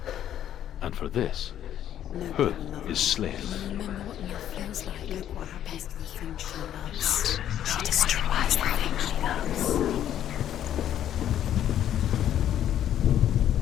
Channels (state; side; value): quieter; right; 10.9 dB